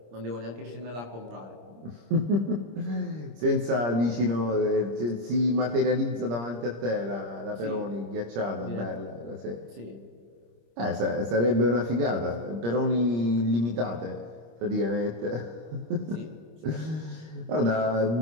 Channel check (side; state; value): left; late; 26 ms